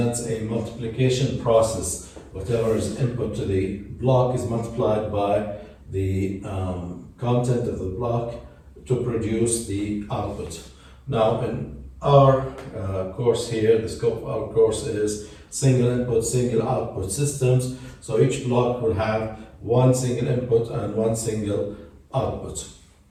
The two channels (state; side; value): identical; both; correlation 1.00